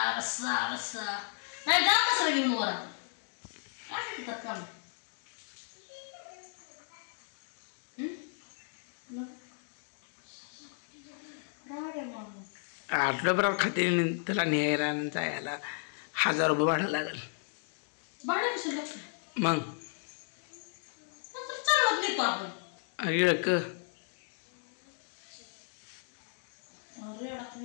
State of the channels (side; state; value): right; silent; 55 dB below the other